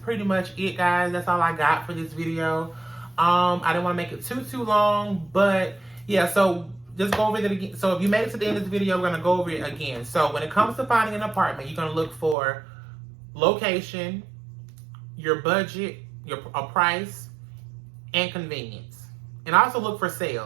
much it, guys. That's all I got for this video. I didn't want to make it too long, but yeah, so just go over it again. So if you made it to the end of this video, we're going to go over it again. So when it comes to finding an apartment, you're going to look for location, your budget, a price, and convenience. And also look for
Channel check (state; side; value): drops out; left; at 12.4 s